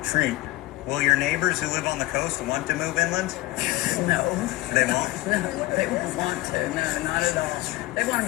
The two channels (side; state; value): right; quieter; 17.9 dB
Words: Will your neighbors who live on the coast want to move inland? No. They won't? No, they won't want to. No, not at all. They want to